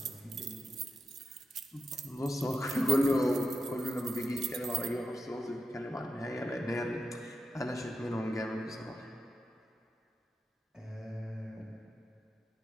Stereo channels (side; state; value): both; normal; correlation 0.88